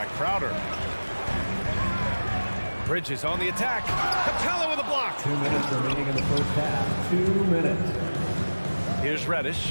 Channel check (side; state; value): both; inverted; correlation -1.00